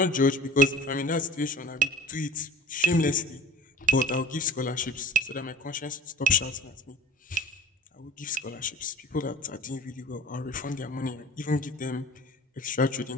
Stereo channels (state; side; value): normal; both; correlation 0.42